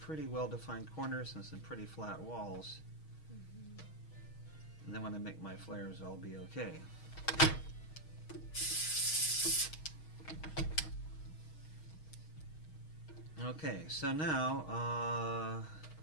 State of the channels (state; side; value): late; right; 6.4 ms